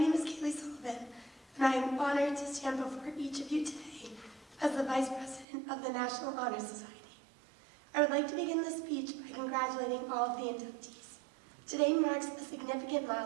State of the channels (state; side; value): drops out; left; at 5.5 s